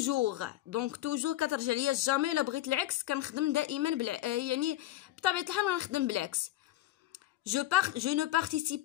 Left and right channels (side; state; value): right; quieter; 15.3 dB